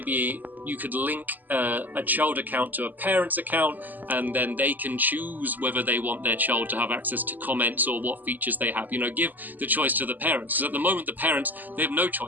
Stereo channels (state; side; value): late; left; 0.085 ms